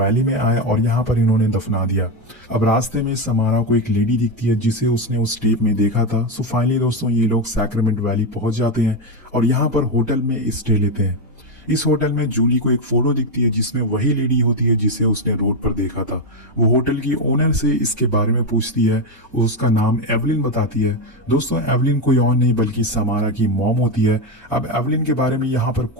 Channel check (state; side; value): normal; both; correlation 0.09